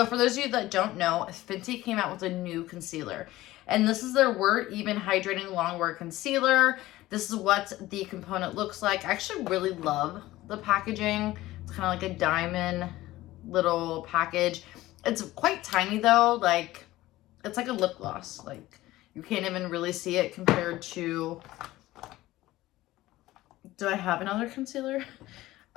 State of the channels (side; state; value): right; quieter; 16.9 dB